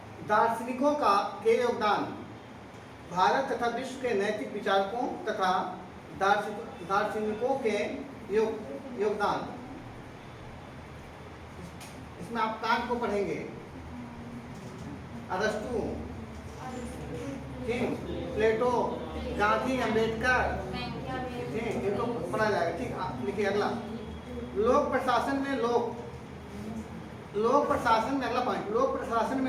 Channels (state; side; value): identical; both; correlation 1.00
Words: दार्शनिकों के योगदान। भारत तथा विश्व के नैतिक विचारकों तथा दार्शनिकों के योगदान। इसमें आप कांट को पढ़ेंगे, अरस्तु, प्लेटो, गांधी, अम्बेडकर, ठीक, इनको पढ़ा जाएगा। ठीक, लिखिए अगला लोक प्रशासन में लोक प्रशासन में, अगला पॉइंट, लोक प्रशासन